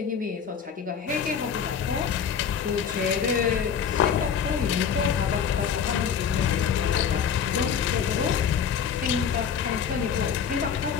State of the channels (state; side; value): quieter; right; 7.3 dB